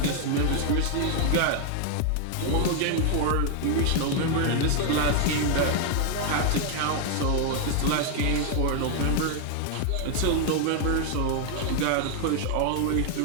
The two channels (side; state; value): both; different; correlation 0.00